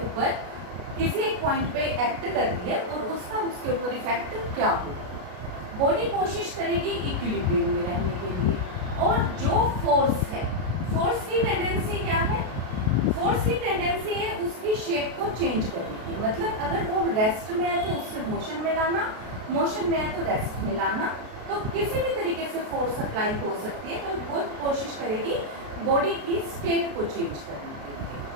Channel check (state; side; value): late; left; 32 ms